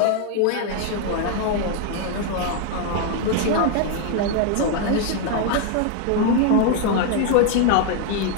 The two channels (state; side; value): different; both; correlation 0.00